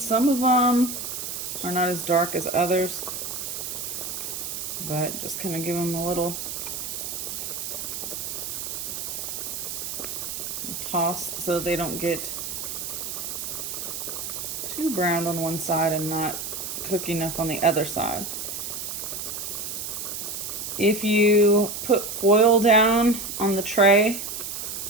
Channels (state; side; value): noise; right; hiss, 5 dB below the sound